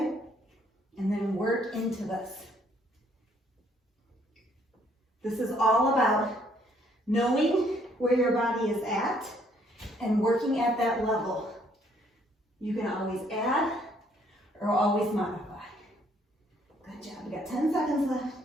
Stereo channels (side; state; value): both; normal; correlation 0.66